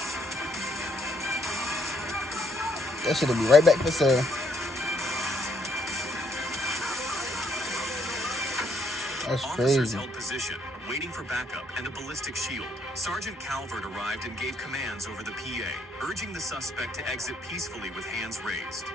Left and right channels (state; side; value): normal; both; correlation 0.71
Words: That shit'll be right back for sale. That's Officers crazy. held position, waiting for backup and a ballistic shield. Sergeant Calvert arrived and gave commands over the PA, urging the suspect to exit peacefully with hands raised.